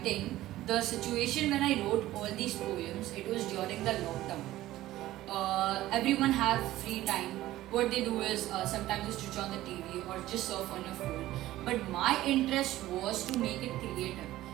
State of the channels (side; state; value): left; quieter; 15.5 dB